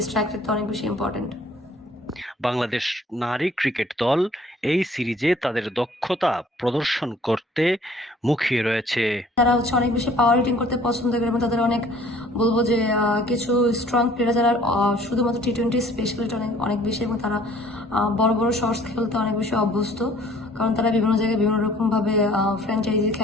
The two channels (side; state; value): both; normal; correlation 0.55